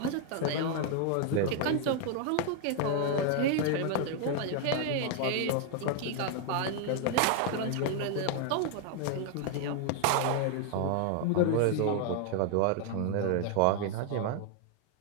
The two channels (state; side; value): different; both; correlation 0.00